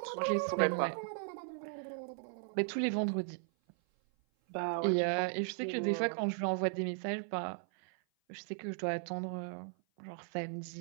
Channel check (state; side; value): silent; left; 53 dB below the other